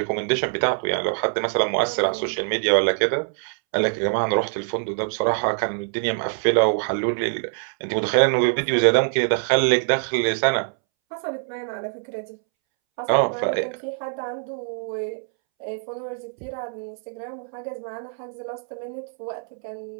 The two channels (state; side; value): silent; left; 63 dB below the other